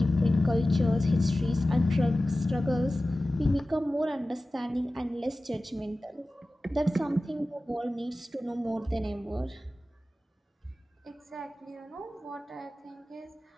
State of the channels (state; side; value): normal; both; correlation 0.96